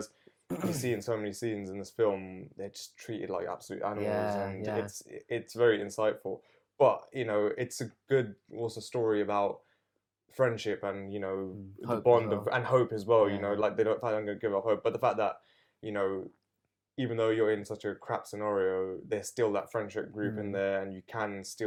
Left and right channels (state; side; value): identical; both; correlation 1.00